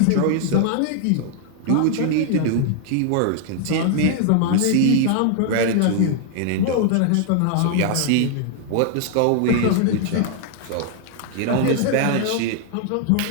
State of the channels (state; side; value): different; both; correlation 0.00